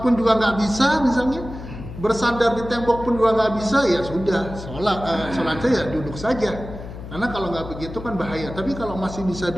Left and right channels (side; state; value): left; noise; hum, 11 dB below the sound